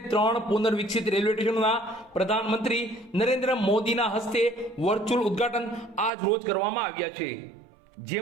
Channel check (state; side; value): drops out; left; at 6.1 s